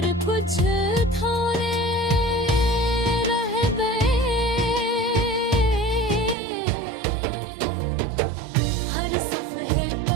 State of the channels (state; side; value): drops out; left; at 6.4 s